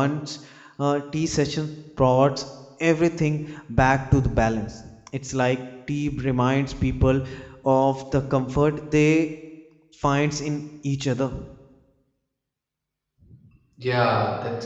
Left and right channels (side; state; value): both; identical; correlation 1.00